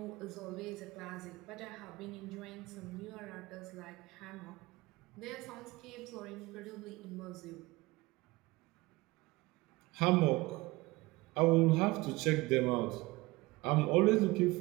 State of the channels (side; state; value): left; quieter; 21.3 dB